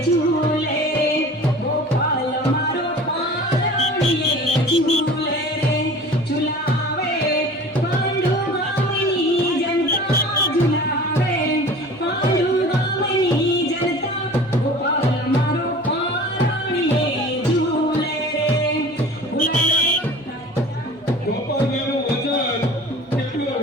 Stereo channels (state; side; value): normal; both; correlation 0.41